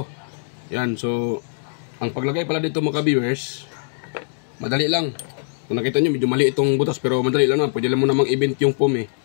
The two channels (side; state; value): right; silent; digital silence